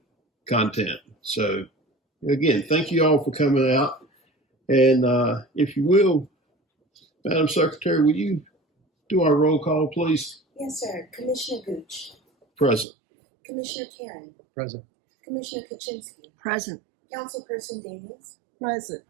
So again, thank you all for coming out. And if you will, Madam Secretary, will you do our roll call, please? Yes, sir. Commissioner Gooch. Present. Commissioner Karen. Present. Commissioner Kaczynski. Present. Councilperson Daniels. Present.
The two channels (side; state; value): left; drops out; at 12.9 s